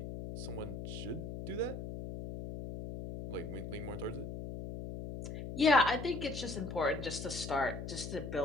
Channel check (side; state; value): left; noise; hum, 7 dB below the sound